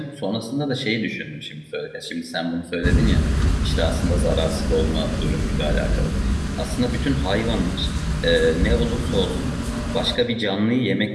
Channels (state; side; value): identical; both; correlation 1.00